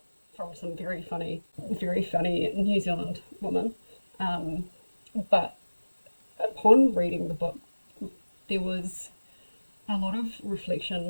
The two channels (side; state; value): both; inverted; correlation -1.00